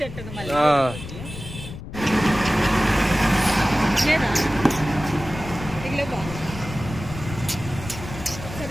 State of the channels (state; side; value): noise; left; rumble, 11 dB below the sound